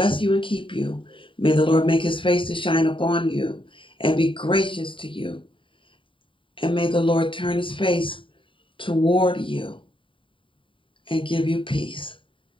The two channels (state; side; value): late; right; 0.25 ms